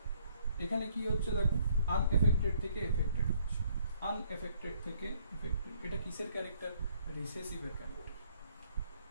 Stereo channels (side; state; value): both; inverted; correlation -0.65